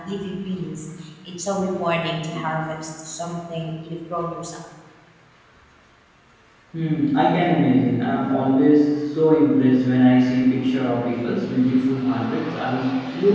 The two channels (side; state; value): both; identical; correlation 1.00